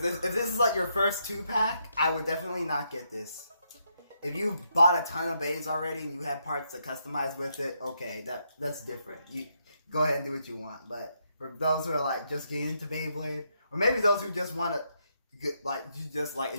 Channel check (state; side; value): inverted; both; correlation -0.78